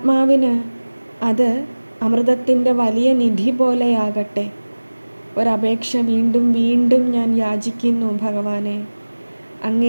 അത് അമൃതത്തിൻ്റെ വലിയ നിധി പോലെയാകട്ടെ. ഒരപേക്ഷ വീണ്ടും വീണ്ടും ഞാൻ യാചിക്കുന്നു ഭഗവാനെ.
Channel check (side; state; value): both; inverted; correlation -1.00